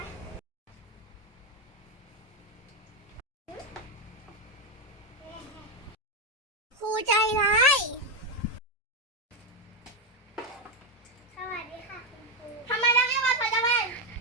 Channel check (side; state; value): both; normal; correlation 0.07